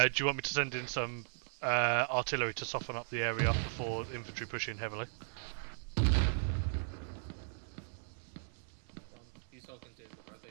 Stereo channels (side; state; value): left; silent; 53 dB below the other